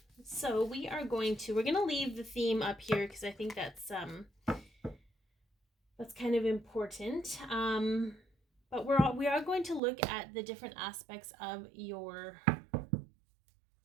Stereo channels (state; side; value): drops out; left; at 9.8 s